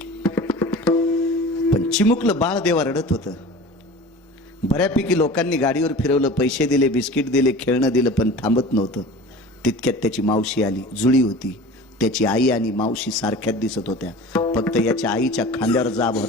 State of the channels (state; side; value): normal; both; correlation 0.38